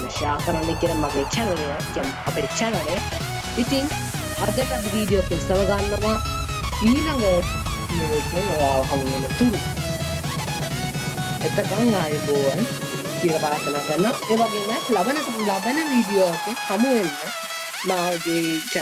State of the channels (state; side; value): identical; both; correlation 1.00